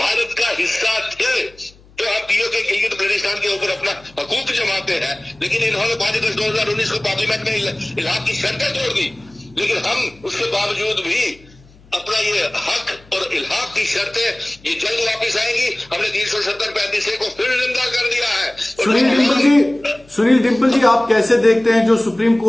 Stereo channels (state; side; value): noise; left; hum, 26 dB below the sound